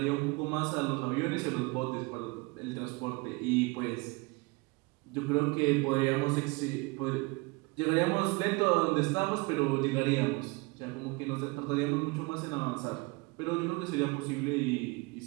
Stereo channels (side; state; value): left; quieter; 26.6 dB